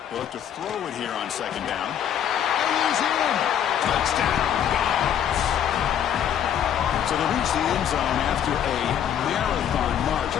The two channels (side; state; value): right; quieter; 9.5 dB